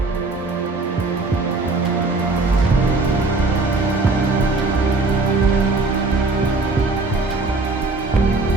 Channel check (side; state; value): left; quieter; 3.5 dB